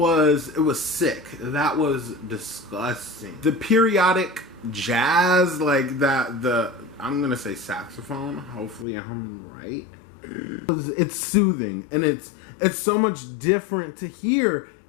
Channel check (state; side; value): drops out; right; at 8.8 s